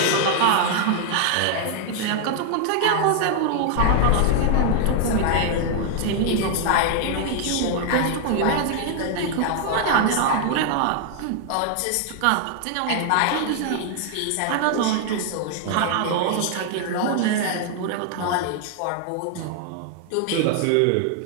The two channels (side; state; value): both; different; correlation 0.00